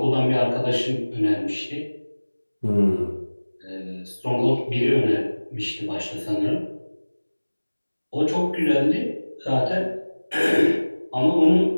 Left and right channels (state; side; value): inverted; both; correlation -1.00